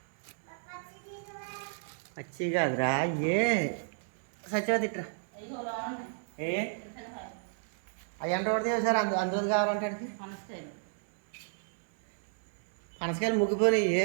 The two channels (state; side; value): silent; left; digital silence